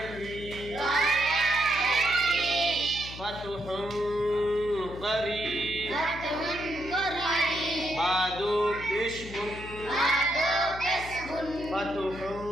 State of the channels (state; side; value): noise; left; hum, 13 dB below the sound